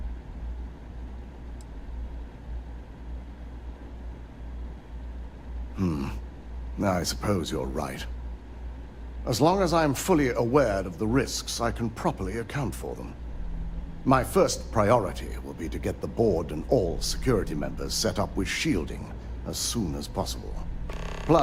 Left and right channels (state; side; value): identical; both; correlation 1.00